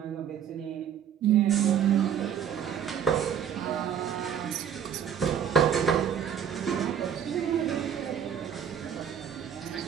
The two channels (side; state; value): left; quieter; 8.6 dB